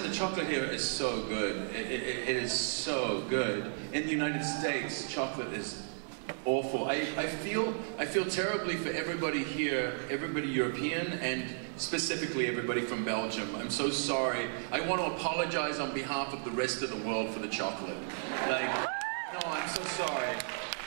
the chocolate here is so good. It is so good. In the United States, chocolate is awful. I feel terribly for everybody here, everybody European, and specifically everybody from Belgium. I'm so sorry. I want to apologize on behalf of the rest of the world for the chocolate. Like, no, I'm so sorry.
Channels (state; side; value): silent; left; digital silence